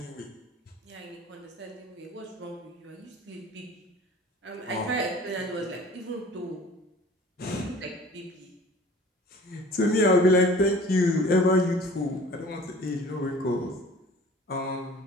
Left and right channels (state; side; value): normal; both; correlation 0.47